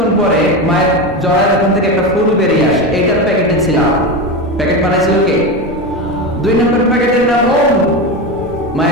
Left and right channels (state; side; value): normal; both; correlation 0.19